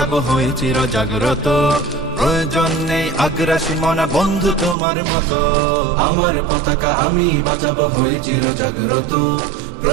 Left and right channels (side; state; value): left; drops out; at 4.8 s